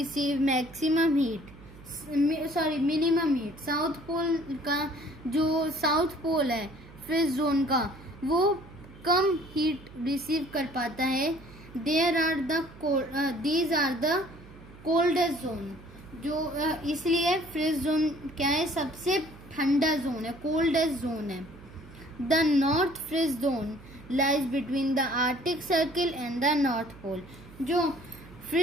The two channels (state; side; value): noise; right; hum, 20 dB below the sound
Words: minimum heat. South pole का जो साउथ पोल है फ्रिज जोन का, वो कम हीट रिसीव कर पाता है. These are the coldest zone. जो इसलिए फ्रिज जोन क्या है? सबसे ठंडा जोन है, कोल्डेस्ट जोन है. The north frigid zone lies between the Arctic circle and the north pole. जो